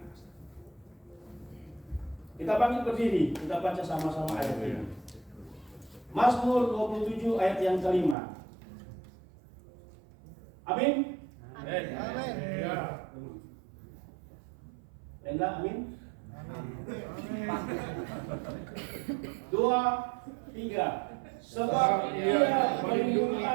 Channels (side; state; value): left; drops out; at 8.2 s